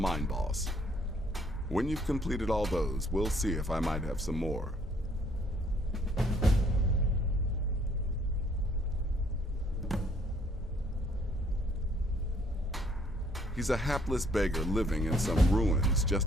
boss. When you've completed all those, we'll see if I might have some more. He's a hapless beggar living in some ruins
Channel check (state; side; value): normal; both; correlation 0.64